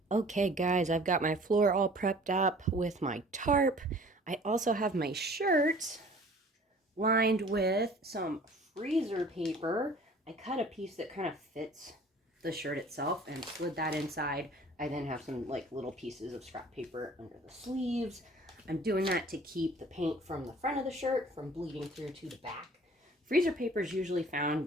Okay guys, I've got my floor all prepped up with my tarp. I also have my shirt lined with some freezer paper. I cut a piece that kind of fits the shirt itself and slid that inside. I then have some like little pieces of scrap paper under the sleeves. I'm doing that to keep the paint from the front of the shirt from bleeding through to the back. Freezer paper is usually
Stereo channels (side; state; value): both; normal; correlation 0.50